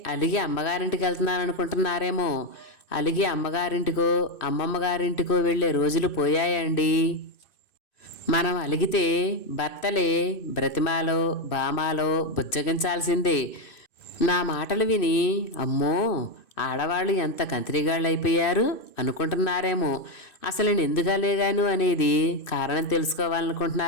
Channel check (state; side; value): late; right; 2.6 ms